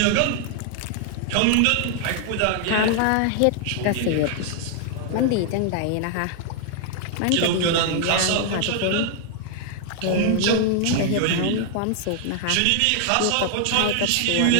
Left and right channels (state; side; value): different; both; correlation 0.00